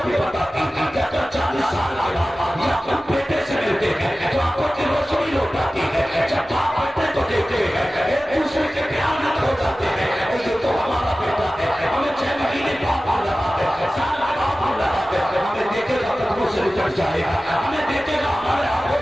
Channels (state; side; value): normal; both; correlation 0.96